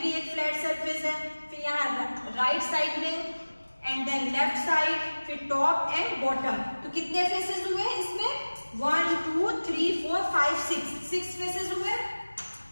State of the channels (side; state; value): both; inverted; correlation -1.00